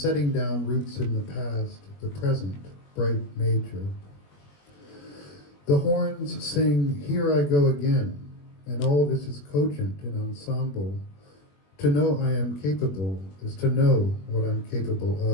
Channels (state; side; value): late; right; 21 ms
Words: down roots in the past, the present, bright major. The horns sing, here I go again, and all this is cogent in ensemble. To know I am capable is to know what I'm capable